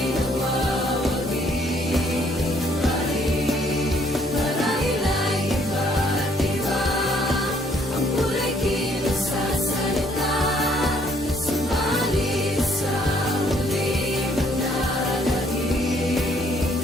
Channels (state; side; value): normal; both; correlation 0.65